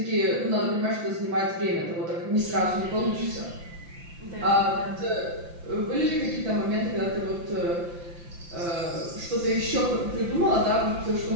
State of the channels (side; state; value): left; late; 5.8 ms